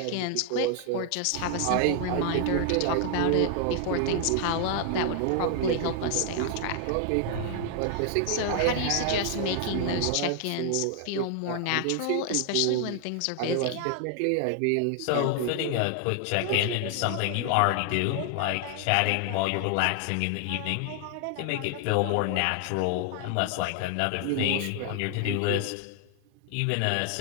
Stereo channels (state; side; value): different; both; correlation 0.00